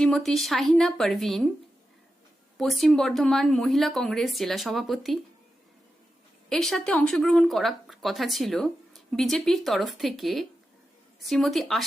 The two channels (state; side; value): normal; both; correlation 0.90